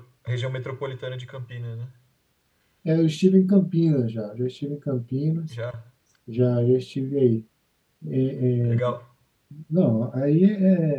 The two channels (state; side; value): identical; both; correlation 1.00